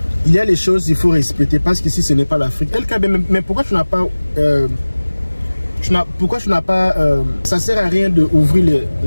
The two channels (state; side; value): inverted; both; correlation -1.00